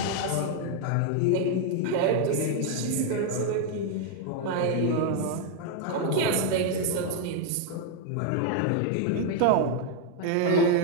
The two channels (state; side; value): different; both; correlation 0.00